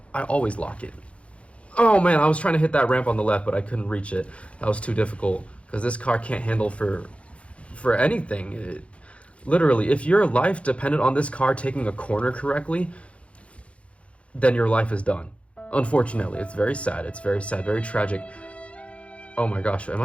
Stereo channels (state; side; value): late; right; 0.062 ms